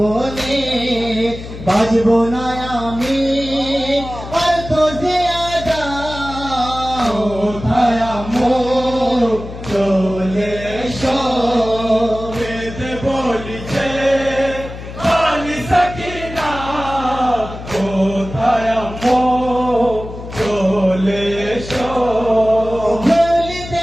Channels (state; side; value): noise; left; hum, 11 dB below the sound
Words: বাজবো না আমি আর তো জিয়াদা কোথায় আমো চলে এসো। কেঁদে বলিছে বালি সখিনা কোথায় আমো চলে এসো।